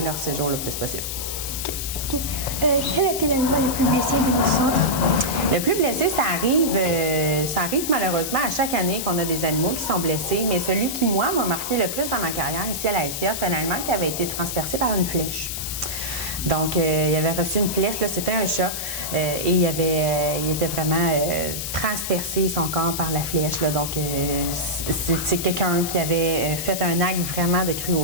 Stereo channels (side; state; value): left; noise; hiss, 5 dB below the sound